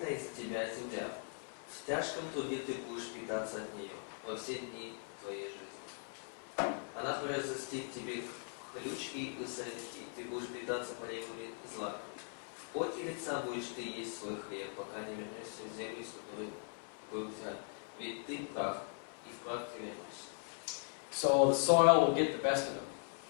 из-за тебя земля. В тяжком труде ты будешь питаться от нее во все дни твоей жизни. Она произрастит тебе хлючки и сорняки, ты будешь питаться полевыми злаками. В поте лица будешь ты есть свой хлеб, пока не вернешься в землю, из которой был взят. Ведь ты прах, и в прах ты вернешься. So the soil will get the best of him.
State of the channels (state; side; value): silent; right; 51 dB below the other